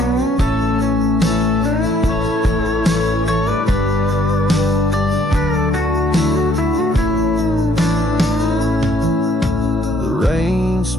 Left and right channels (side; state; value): both; normal; correlation 0.65